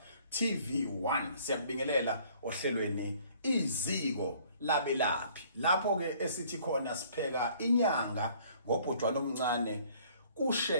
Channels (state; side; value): inverted; both; correlation -0.58